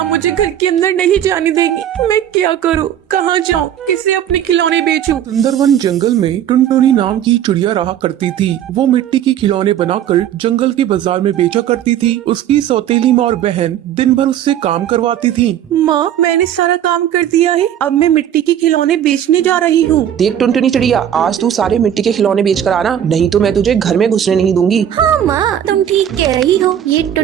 मुझे घर के अंदर नहीं जाने देगी। मैं क्या करूँ, कहाँ जाऊँ, किसे अपने खिलौने बेचूं? सुंदरवन जंगल में टुनटुनी नाम की चिड़िया रहा करती थी। वो मिट्टी के खिलौने बनाकर जंगल के बाजार में बेचा करती थी। उसकी सौतेली माँ और बहन दिन भर उससे काम करवाती थी। माँ, मैंने सारा काम कर दिया है, अब मैं मिट्टी के खिलौने बेचने जा रही हूँ। देख टुनटुनी चिड़िया, आज तू सारे मिट्टी के खिलौने बेच कर आना, नहीं तो मैं तुझे घर में घुसने नहीं दूंगी। हाँ माँ, तुम ठीक कह रही हो। ये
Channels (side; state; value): left; quieter; 10.4 dB